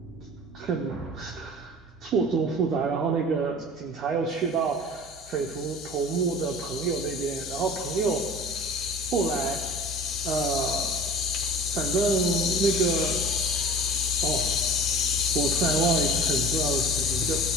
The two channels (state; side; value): normal; both; correlation 0.42